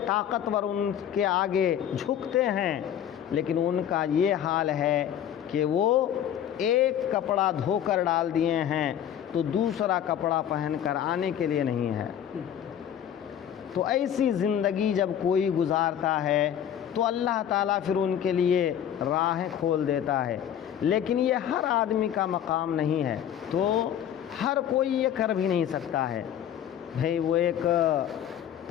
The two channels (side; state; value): right; quieter; 9.9 dB